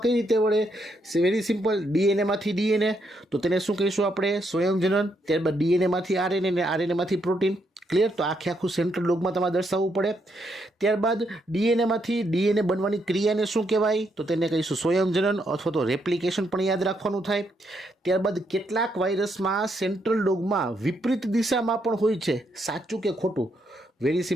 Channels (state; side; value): normal; both; correlation 0.77